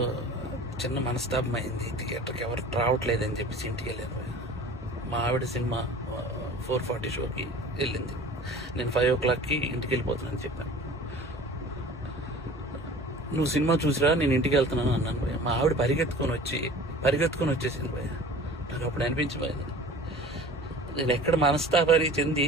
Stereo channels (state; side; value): normal; both; correlation 0.42